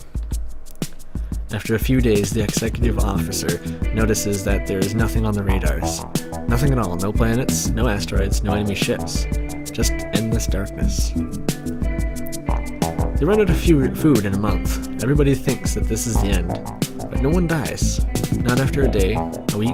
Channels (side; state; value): both; identical; correlation 1.00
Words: After a few days, the executive officer notices that there is nothing on the radars. Nothing at all, no planets, no asteroids, no enemy ships. Just endless darkness. They run out of food in a month. Everybody thinks that this is the end. But no one dies. Not after a day, a